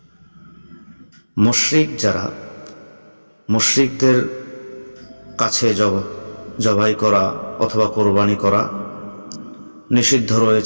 মুশরিক মুশরিকদের কাছে জবাই করা অথবা কোরবানি করা নিষিদ্ধ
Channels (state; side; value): inverted; both; correlation -1.00